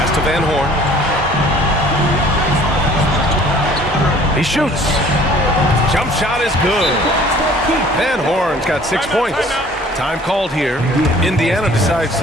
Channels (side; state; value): both; normal; correlation 0.52